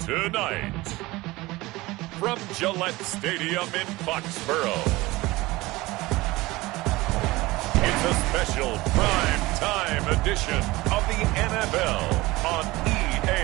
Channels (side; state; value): left; quieter; 20.3 dB